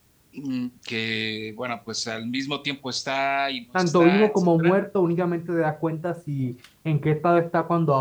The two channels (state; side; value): identical; both; correlation 1.00